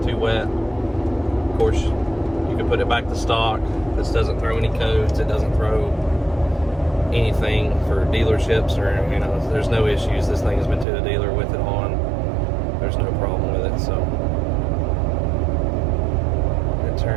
too wet. Of course, you can put it back to stock. This doesn't throw any codes. It doesn't throw anything for dealerships, or, you know, there's no issues. This thing has been to the dealer with it on. There's no problem with it. So it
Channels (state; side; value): drops out; left; at 10.9 s